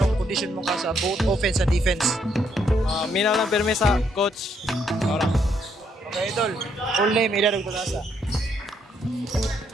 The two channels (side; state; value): both; normal; correlation 0.73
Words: condition mo ka sa both offense and defense? Mina lang pirme sa coach. Ora. Okay idol, full name, edad ug kalasa.